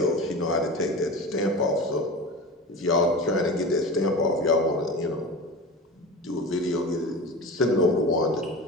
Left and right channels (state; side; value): normal; both; correlation 0.31